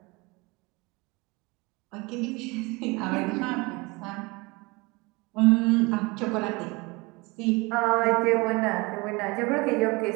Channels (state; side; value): quieter; left; 25.4 dB